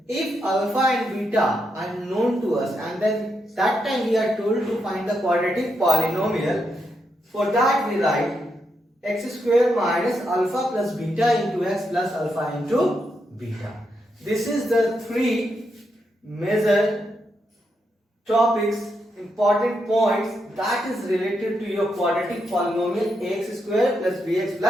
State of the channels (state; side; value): normal; both; correlation 0.82